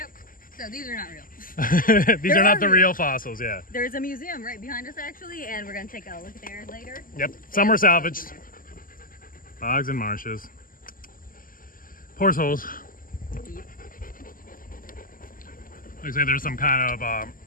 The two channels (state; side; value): late; right; 0.41 ms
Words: So these are not real. These are not the real fossils, yeah. There's a museum right behind us, actually, and we're going to take a look there later. Yep, some were salvaged. Bogs and marshes. Horse holes. Looks like there's some kind of